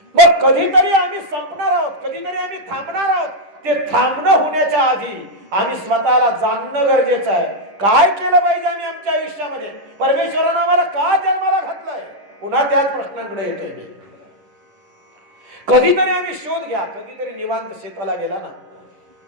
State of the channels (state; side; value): late; left; 10 ms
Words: मग कधीतरी आम्ही संपणार आहोत, कधीतरी आम्ही थांबणार आहोत. ते थांबणं होण्याच्या आधी आम्ही स्वतःला जाणणं गरजेचं आहे. काय केलं पाहिजे आम्ही आमच्या आयुष्यामध्ये? परमेश्वरानं आम्हाला का जन्माला घातलंय? पुन्हा त्याच प्रश्नांकडे येतोय मी. कधीतरी आम्ही शोध घ्या, कधीतरी निवांत शेताला गेला ना,